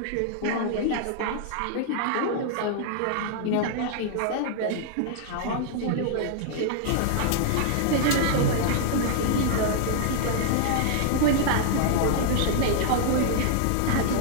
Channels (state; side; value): different; both; correlation 0.00